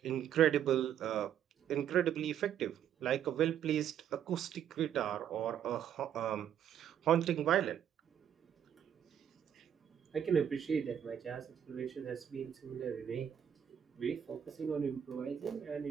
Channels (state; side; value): quieter; left; 9.4 dB